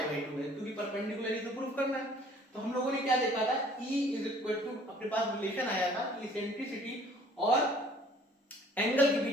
बाई 2 है, क्योंकि परपेंडिकुलर ही तो प्रूफ करना है। तो हम लोगों ने क्या देखा था, E इज इक्वल टू, अपने पास रिलेशन आया था कि इसेंट्रिसिटी और एंगल के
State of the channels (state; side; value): normal; both; correlation 0.55